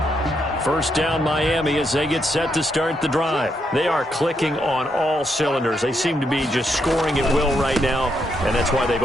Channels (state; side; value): normal; both; correlation 0.79